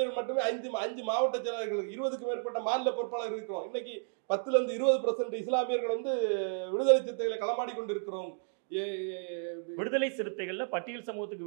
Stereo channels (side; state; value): left; silent; digital silence